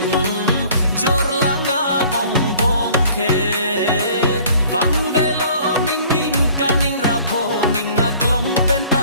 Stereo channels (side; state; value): both; inverted; correlation -0.53